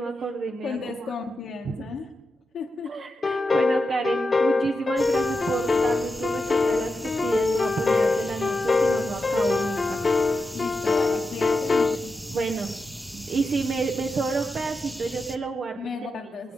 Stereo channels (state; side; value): normal; both; correlation 0.89